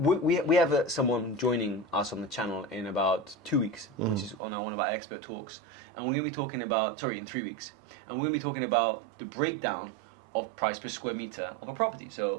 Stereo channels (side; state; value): left; drops out; at 4.4 s